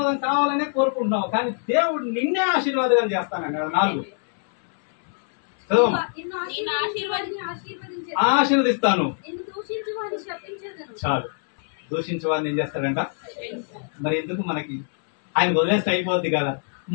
కావాలనే కోరుకుంటున్నావు, కానీ దేవుడు నిన్నే ఆశీర్వాదం చేస్తానండి. 4, ఆశీర్వదిస్తాను. చాలు. దూషించే వాడిని ఏం చేస్తాడంట? మరి ఎందుకు మనకి? ఆయన వదిలేస్తే అయిపోద్ది కదా.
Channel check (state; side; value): silent; right; 63 dB below the other